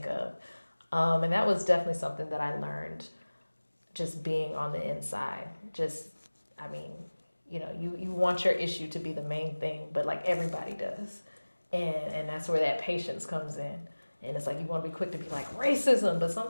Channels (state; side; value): inverted; both; correlation -1.00